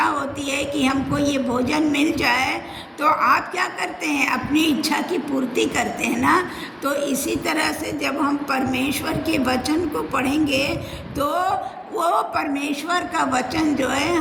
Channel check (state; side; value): identical; both; correlation 1.00